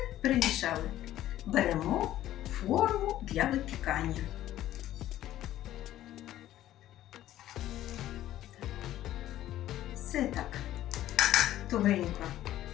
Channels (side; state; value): right; quieter; 13.4 dB